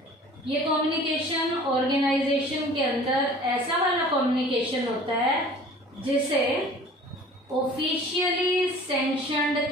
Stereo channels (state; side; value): normal; both; correlation 0.47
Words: ये कम्युनिकेशन ऑर्गेनाइजेशन के अंदर ऐसा वाला कम्युनिकेशन होता है जिसे ऑफिशियली सैंक्शनड